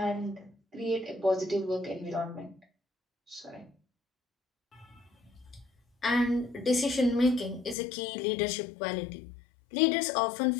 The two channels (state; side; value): drops out; right; at 7.8 s